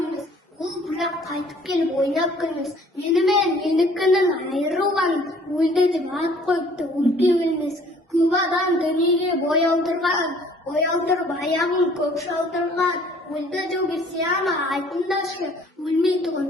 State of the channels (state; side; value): normal; both; correlation 0.56